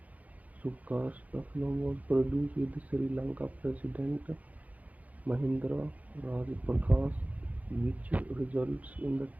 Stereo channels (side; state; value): left; late; 0.074 ms